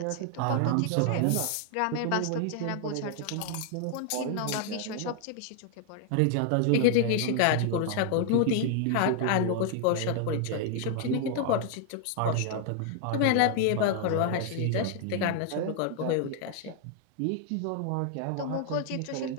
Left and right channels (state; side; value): different; both; correlation 0.00